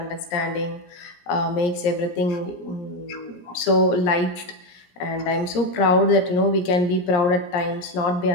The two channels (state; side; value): late; right; 17 ms